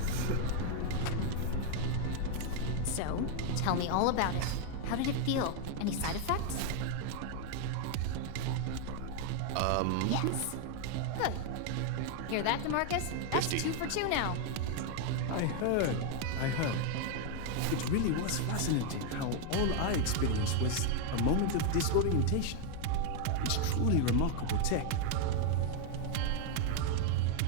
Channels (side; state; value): both; different; correlation 0.00